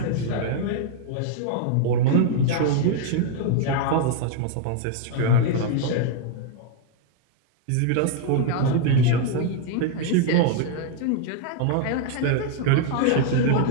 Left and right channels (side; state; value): both; different; correlation 0.00